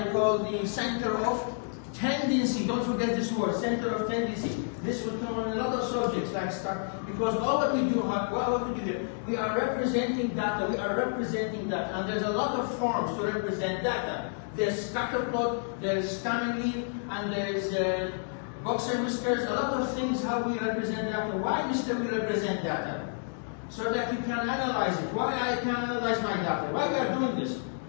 call the center of tendency. Don't forget this word, center of tendency. This will come on a lot of subjects like because all what we do, what we do here, we are representing data. We are representing data, and there's a lot of forms to represent data. There's scatterplot, there's family, and there's boxer whiskers. A lot of things how we represent data. Why, Mr. We represent data? So that you can analyze it. Why I can analyze my data? Why we are doing this?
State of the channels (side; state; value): right; silent; digital silence